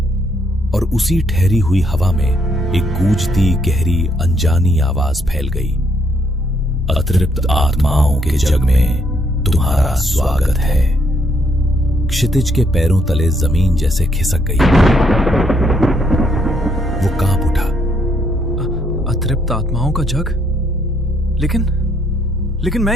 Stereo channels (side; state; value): both; normal; correlation 0.72